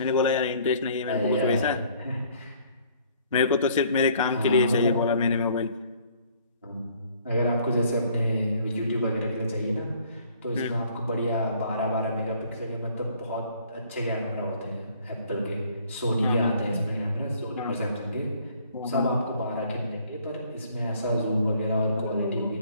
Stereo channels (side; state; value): both; inverted; correlation -0.59